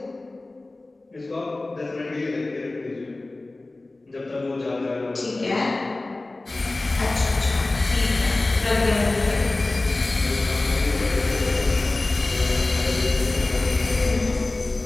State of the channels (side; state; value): right; quieter; 3.0 dB